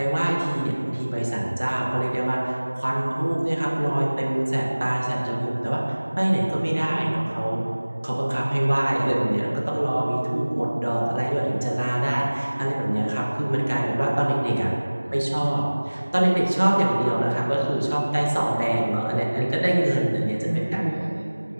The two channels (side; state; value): both; inverted; correlation -1.00